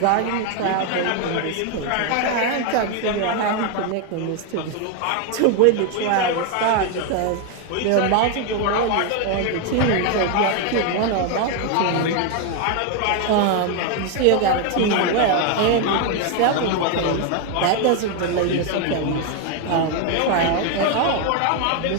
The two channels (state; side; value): different; both; correlation 0.01